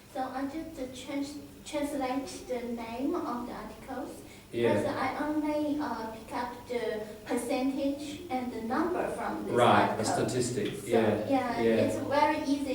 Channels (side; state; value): both; identical; correlation 1.00